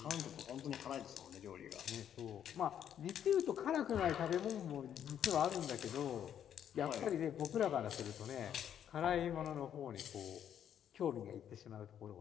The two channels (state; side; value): quieter; right; 9.5 dB